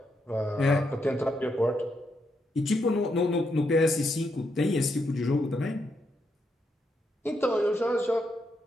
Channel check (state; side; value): normal; both; correlation 0.80